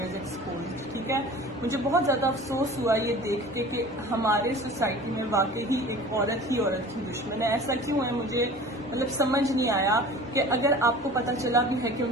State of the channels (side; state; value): both; normal; correlation 0.41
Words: एक्सपोज्ड, ठीक है। मुझे बहुत ज़्यादा अफसोस हुआ ये देख के कि हमारे सोसाइटी में वाकई ही एक औरत ही औरत की दुश्मन है। ऐसा क्यों है मुझे मतलब समझ नहीं आया कि अगर आपको पता चला भी है कि